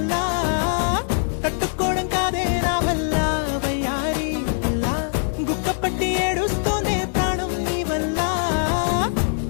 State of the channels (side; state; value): right; silent; digital silence